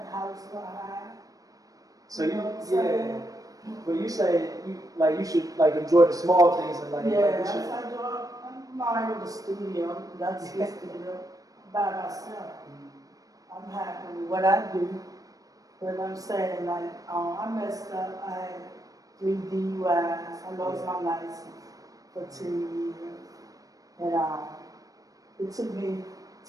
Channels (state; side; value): late; left; 0.17 ms